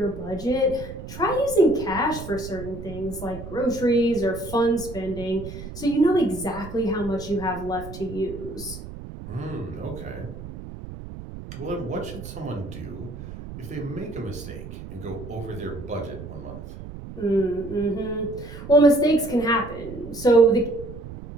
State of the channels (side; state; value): right; noise; rumble, 12 dB below the sound